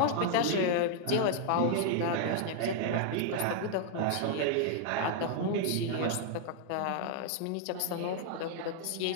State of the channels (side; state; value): both; different; correlation 0.00